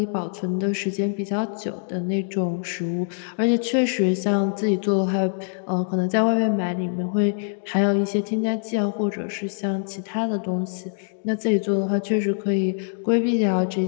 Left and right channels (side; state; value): right; silent; digital silence